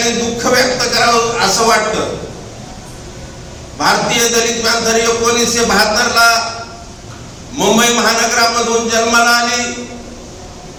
दुःख व्यक्त करावं असं वाटतं। भारतीय दलित पॅंथर 1972 ला मुंबई महानगरामधून जन्माला आली।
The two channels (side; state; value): both; identical; correlation 1.00